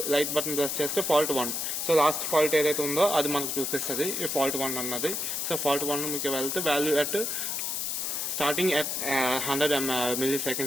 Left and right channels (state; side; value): noise; left; hiss, 1 dB below the sound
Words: లైట్ బటన్ ప్రెస్ చేస్తే ఫాల్ట్ 1. సో లాస్ట్ ఫాల్ట్ ఏదైతే ఉందో అది మనకు చూపిస్తుంది, ఈ ఫాల్ట్ 1 అన్నది. సో ఫాల్ట్ 1 మీకు వెళ్తే value at starting at 100